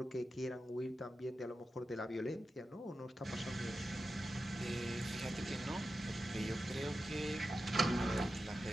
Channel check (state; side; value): normal; both; correlation 0.91